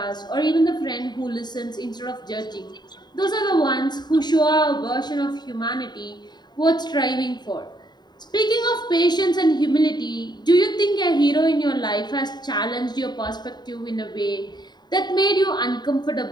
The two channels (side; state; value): right; late; 0.21 ms